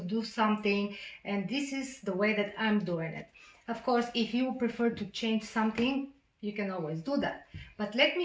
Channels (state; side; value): identical; both; correlation 1.00